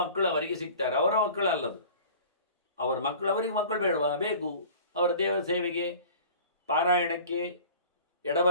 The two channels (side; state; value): both; inverted; correlation -0.42